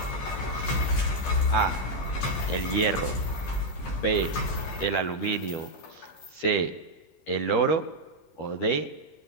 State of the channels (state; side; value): late; right; 13 ms